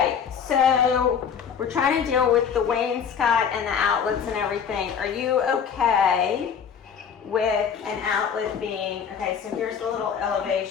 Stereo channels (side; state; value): right; quieter; 7.2 dB